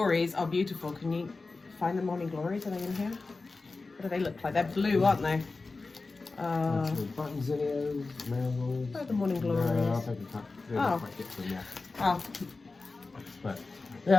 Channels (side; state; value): right; quieter; 3.7 dB